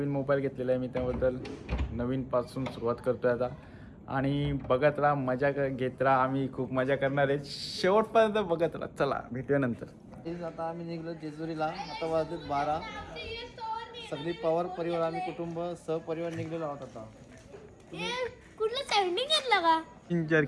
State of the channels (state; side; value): identical; both; correlation 1.00